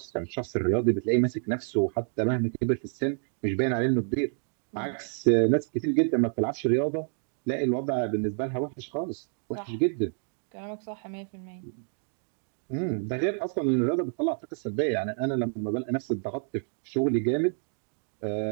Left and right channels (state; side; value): silent; left; 55 dB below the other